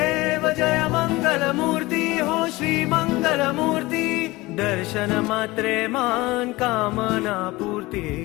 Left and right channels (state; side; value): quieter; right; 20.8 dB